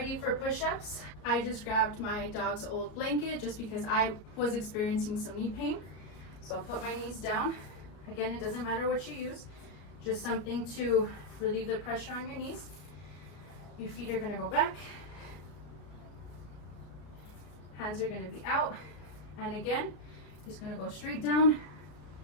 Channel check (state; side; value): late; right; 34 ms